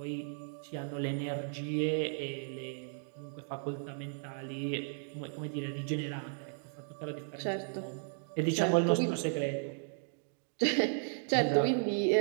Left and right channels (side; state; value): left; silent; digital silence